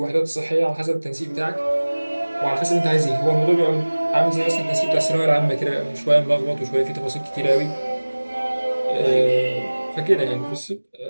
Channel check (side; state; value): both; inverted; correlation -1.00